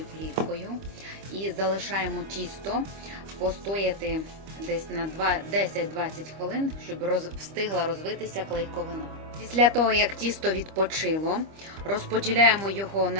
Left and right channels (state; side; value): late; left; 25 ms